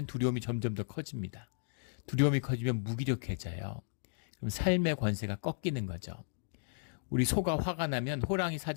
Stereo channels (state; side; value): silent; right; digital silence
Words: 두려움이 점점 더 커집니다. 두려움이 커지면 무기력해져요. 그럼 삶의 권세가 꺾이는 거죠. 우리 소가 화가 나면 호랑이